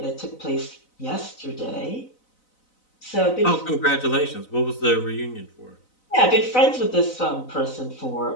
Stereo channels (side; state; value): right; late; 4.0 ms